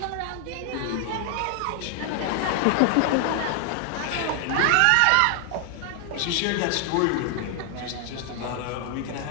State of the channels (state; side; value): different; both; correlation 0.00